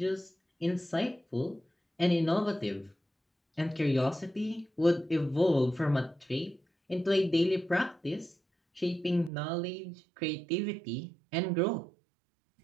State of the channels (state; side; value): drops out; left; at 9.3 s